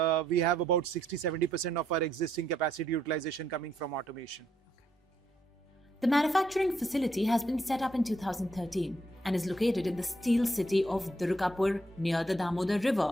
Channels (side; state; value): both; normal; correlation 0.74